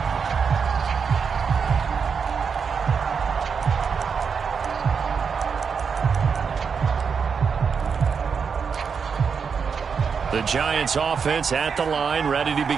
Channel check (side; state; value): left; quieter; 6.1 dB